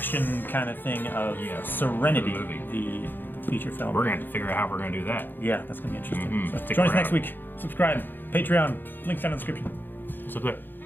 kind of thing of Serenity, the feature film. We're going to have to figure out how we're going to do that. Yeah, that's going to be interesting. So join us next week. Subscribe. Patreon. Links down in the description. What's up there?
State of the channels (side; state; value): right; late; 0.093 ms